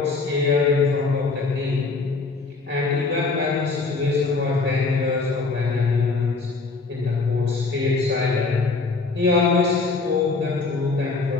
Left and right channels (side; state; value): right; quieter; 4.0 dB